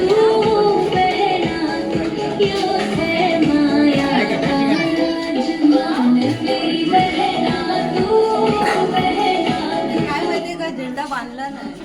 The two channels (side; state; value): both; identical; correlation 1.00